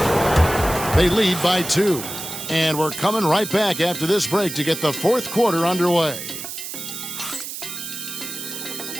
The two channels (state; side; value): noise; right; hiss, 8 dB below the sound